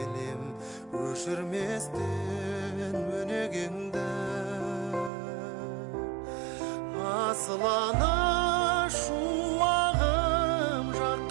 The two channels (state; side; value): drops out; left; at 5.1 s